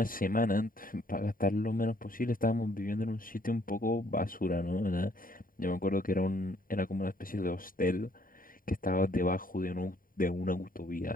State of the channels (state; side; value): late; right; 0.41 ms